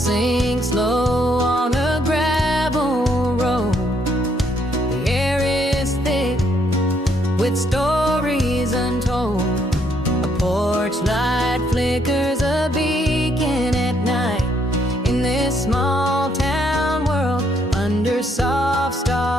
low on a gravel road. The air is thick with stories untold. A porch light flickers a beacon at night in this small town world under soft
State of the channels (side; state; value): both; normal; correlation 0.71